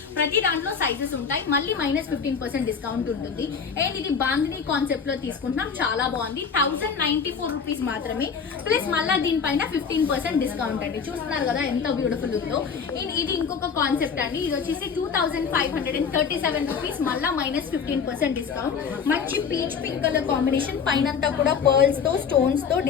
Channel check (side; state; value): right; quieter; 6.2 dB